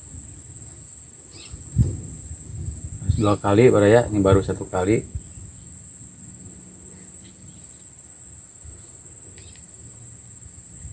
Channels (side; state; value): both; identical; correlation 1.00